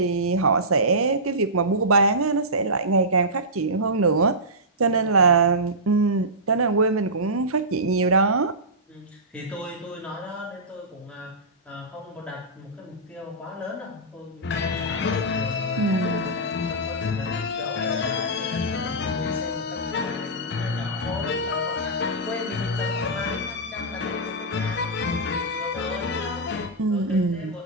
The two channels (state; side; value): normal; both; correlation -0.16